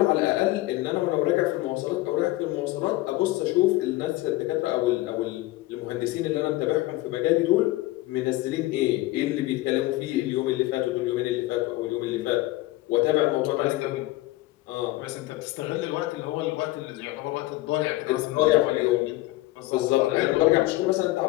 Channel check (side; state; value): right; quieter; 18.2 dB